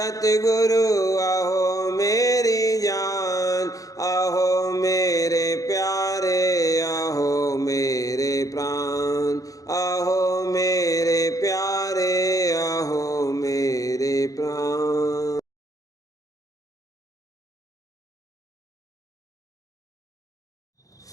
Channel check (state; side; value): late; right; 0.17 ms